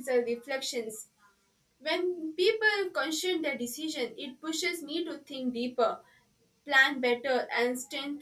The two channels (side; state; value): both; identical; correlation 1.00